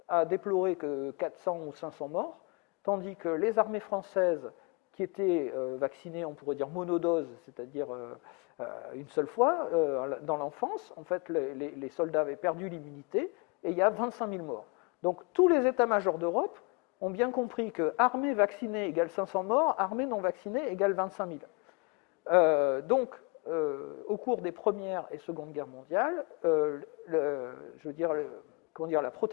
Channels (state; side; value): quieter; right; 30.3 dB